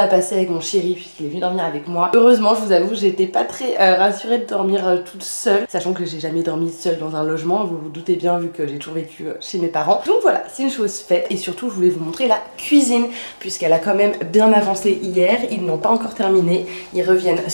passé avec mon chéri puisqu'il est venu dormir avec moi. Heureusement, je vous avoue, j'étais pas très rassurée de dormir toute seule. Sachant que j'ai jamais dormi seule dans un logement, vous vous doutez bien vu que j'ai toujours vécu chez mes parents. Donc voilà, c'est une chose faite et surtout je voulais vous montrer la cuisine puisqu'elle a quand même bien avancé hier. Ils n'ont pas encore terminé, ils reviennent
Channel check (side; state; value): both; inverted; correlation -1.00